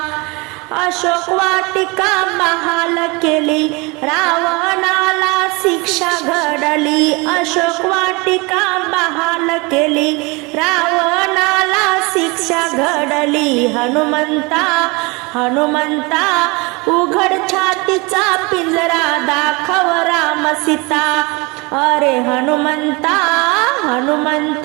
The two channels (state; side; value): quieter; left; 26.9 dB